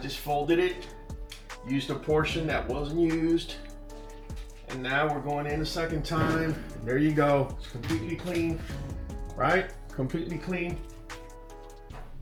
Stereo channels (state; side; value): identical; both; correlation 1.00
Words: folded it, used a portion that wasn't used, and now we're going in a second time. There you go. It's completely clean, right? Completely clean.